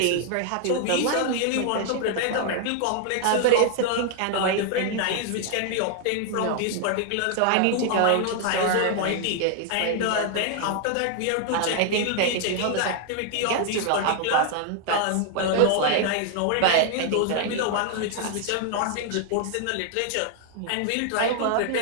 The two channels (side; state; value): both; different; correlation 0.00